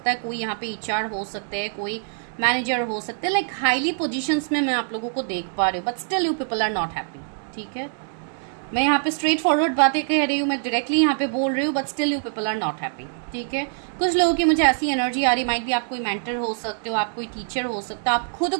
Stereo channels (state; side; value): silent; left; digital silence